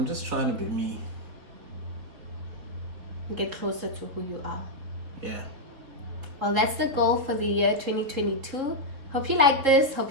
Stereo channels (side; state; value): left; late; 3.8 ms